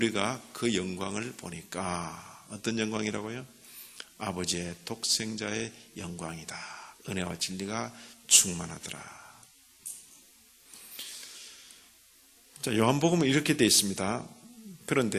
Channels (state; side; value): identical; both; correlation 1.00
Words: 그 영광을 보니까 어떤 영광이라고요? 아버지의 독생자의 영광이다. 은혜와 진리가 충만하더라. 자, 요한복음은 이렇게 되어 있습니다.